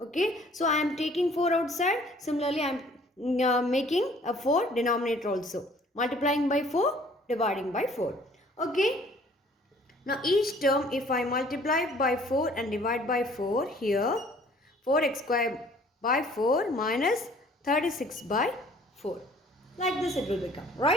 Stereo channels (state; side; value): normal; both; correlation 0.56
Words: Okay, so I am taking 4 outside. Similarly, I am making a 4 denominator also. Multiplying by 4, dividing by 4. Okay, now each term, if I multiply by 4 and divide by 4, here 4x square by 4 minus 36 by 4. Like this it will become,